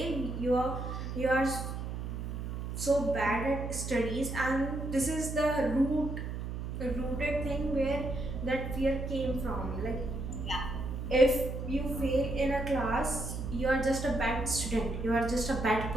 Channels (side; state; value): right; noise; hum, 5 dB below the sound